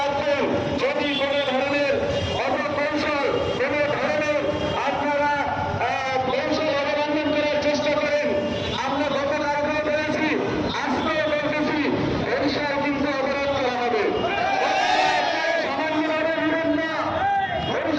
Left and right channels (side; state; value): both; identical; correlation 1.00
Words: যদি কোনো ধরনের অপকৌশল, কোনো ধরনের আপনারা কৌশল অবলম্বন করার চেষ্টা করেন, আমরা গতকালকেও বলেছি, আজকেও বলতেছি, বরিশাল কিন্তু অবরোধ করা হবে। সামান্যভাবে বিরোধ না,